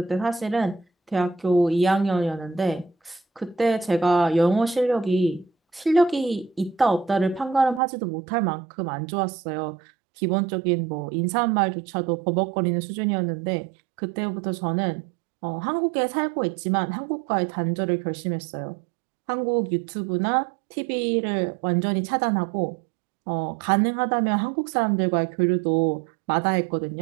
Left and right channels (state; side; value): drops out; left; at 7.8 s